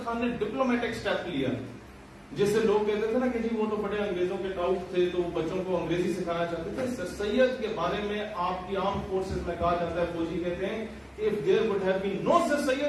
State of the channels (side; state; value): both; identical; correlation 1.00